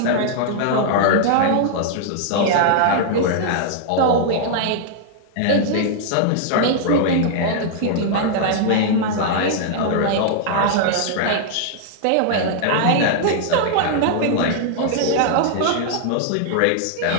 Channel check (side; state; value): both; different; correlation -0.01